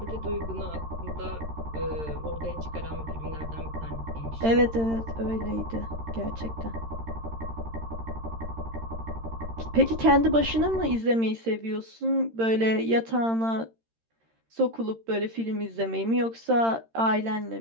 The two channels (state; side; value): late; left; 13 ms